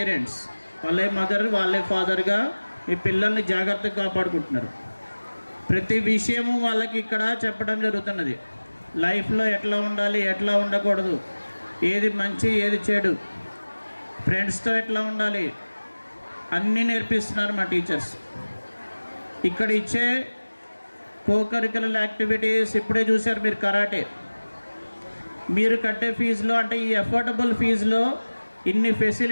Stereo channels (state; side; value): inverted; both; correlation -1.00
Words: వాళ్ళే మదర్, వాళ్ళే ఫాదర్గా మీ పిల్లల్ని జాగ్రత్తగా కాపాడుకుంటున్నారు. ప్రతి విషయము వాళ్ళకి ఇక్కడ చెప్పడం జరుగుతున్నది. లైఫ్లో ఎట్లా ఉండాలి, ఎట్లా ఉండకూడదు, ఏది మంచి ఏది చెడు, ఫ్రెండ్స్తో ఎట్లా ఉండాలి, అన్నీ నేర్పిస్తున్నారు మా టీచర్స్. ఇక్కడ ఇచ్చే కోకరికులర్ యాక్టివిటీస్ ఇప్పుడే చూశారు మీరు. కరాటే మీరు కట్టే ఫీజులో, అంటే ఈ అఫోర్డబుల్ ఫీజులో ఇన్ని